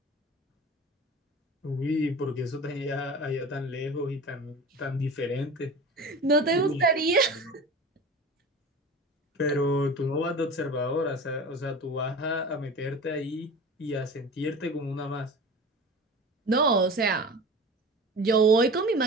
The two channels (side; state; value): both; normal; correlation 0.35